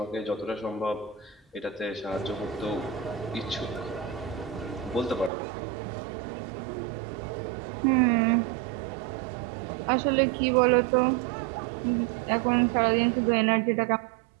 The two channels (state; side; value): drops out; left; at 5.3 s